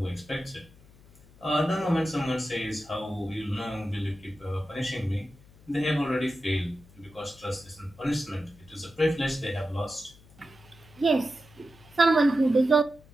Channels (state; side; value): noise; left; hum, 25 dB below the sound